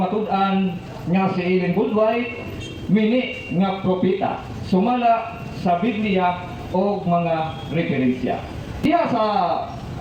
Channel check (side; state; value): both; identical; correlation 1.00